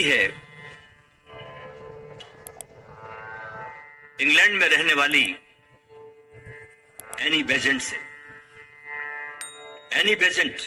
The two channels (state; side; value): identical; both; correlation 1.00